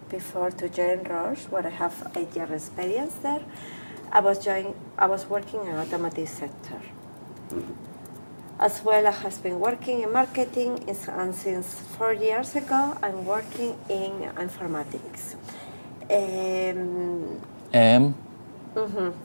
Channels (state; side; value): inverted; both; correlation -1.00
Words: before to join Roche, where I have 8 years experience there. I was working in automotive sector. As well, I have been working in marketing, and since 4 years ago, I'm working in informatics.